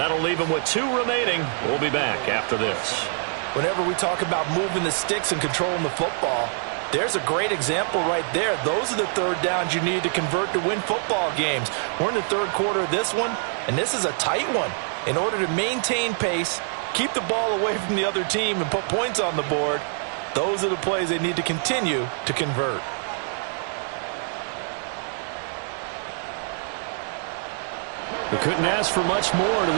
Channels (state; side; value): silent; left; 57 dB below the other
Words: leave them with 2 remaining. We'll be back after this. Whenever we talk about moving the sticks and controlling the football, there's a great example right there. Those are the 3rd downs you need to convert to win football games. We're in the 3rd quarter of this one, and this is a tight one. In order to maintain pace, keep the ball away from the other team, and put points on the board, Those are the plays they need to continue to convert. We couldn't ask for much more to